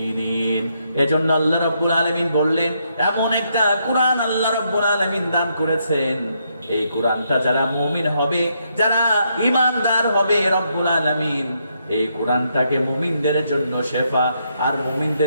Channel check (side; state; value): both; inverted; correlation -0.77